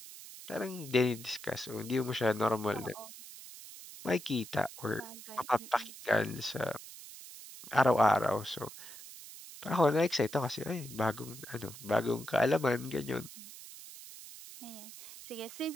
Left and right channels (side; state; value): right; noise; hiss, 14 dB below the sound